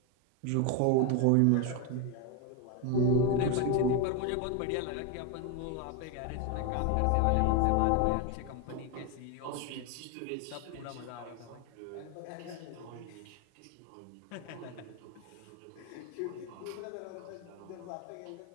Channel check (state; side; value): different; both; correlation 0.02